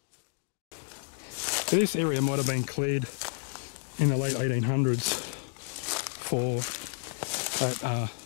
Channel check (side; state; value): right; silent; digital silence